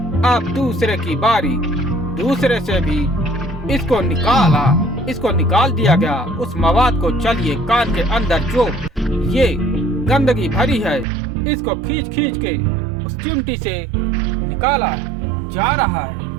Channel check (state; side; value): drops out; left; at 11.1 s